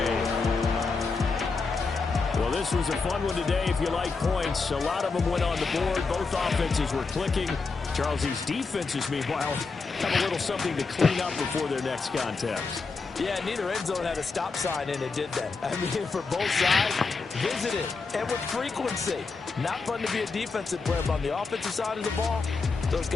Well, this was a fun one today if you like points. A lot of them went on the board. Both offenses were clicking. Charles, these defenses, meanwhile, have a little something to clean up before their next contest. Yeah, neither end zone had a stop sign in it, did they? I mean, for both sides, visited and with frequency. Not fun to be a defensive player, but on the offensive side of the ball, those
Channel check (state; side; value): quieter; right; 4.4 dB